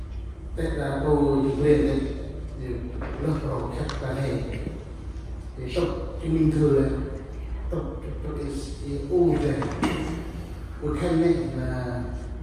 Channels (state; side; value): identical; both; correlation 1.00